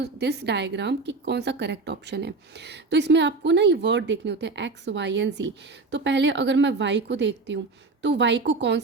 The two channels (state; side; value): quieter; left; 3.8 dB